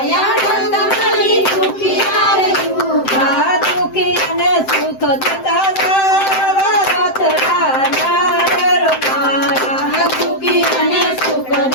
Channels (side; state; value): right; late; 7.7 ms